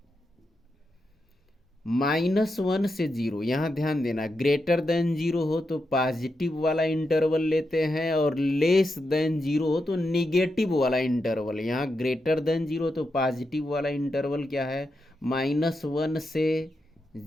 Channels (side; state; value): both; normal; correlation 0.86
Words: -1 से 0। यहाँ ध्यान देना, ग्रेटर देन 0 हो तो पॉजिटिव वाला इंटरवल लेते हैं, और लेस देन 0 हो तो निगेटिव वाला इंटरवल। यहाँ ग्रेटर देन 0 तो पॉजिटिव वाला इंटरवल क्या है, -1 से